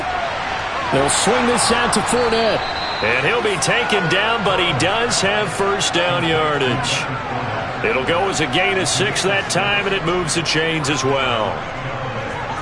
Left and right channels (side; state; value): both; identical; correlation 1.00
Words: They'll swing this out to Fournette. And he'll be taken down, but he does have first down yardage. It'll go as a gain of 6 that time, and it moves the chains as well.